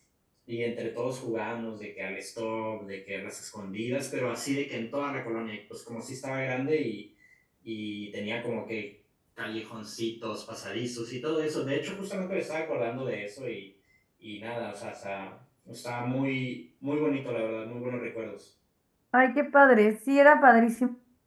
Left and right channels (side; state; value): both; identical; correlation 1.00